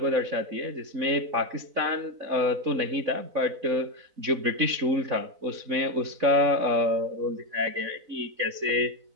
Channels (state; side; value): late; left; 4.0 ms